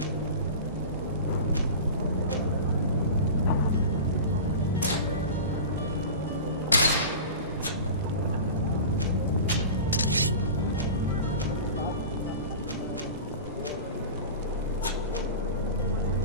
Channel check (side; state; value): both; inverted; correlation -0.33